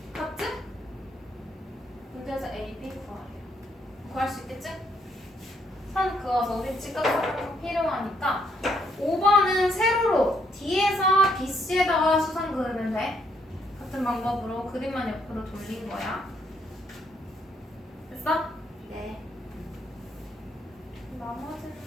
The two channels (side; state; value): both; normal; correlation 0.71